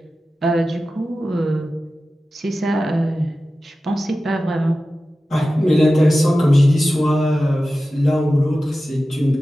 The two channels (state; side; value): normal; both; correlation 0.94